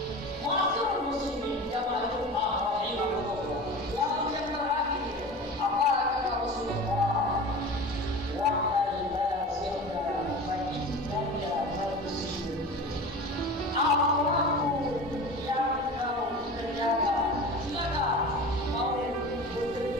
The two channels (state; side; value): normal; both; correlation 0.34